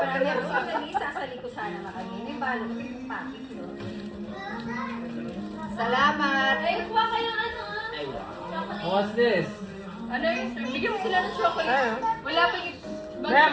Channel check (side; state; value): both; identical; correlation 1.00